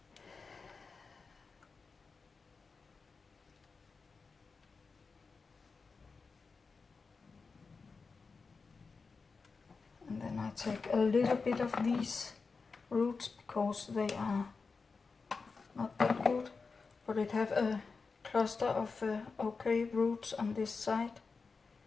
And then I take a little bit of these roots because they are not that good, but it have a cluster of okay roots on this side.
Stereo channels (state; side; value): quieter; right; 4.6 dB